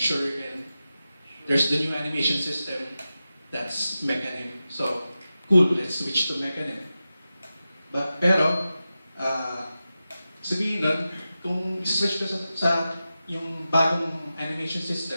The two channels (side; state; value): both; inverted; correlation -0.93